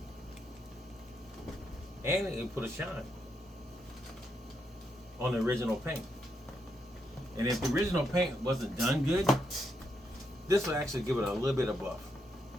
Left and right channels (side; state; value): both; normal; correlation 0.80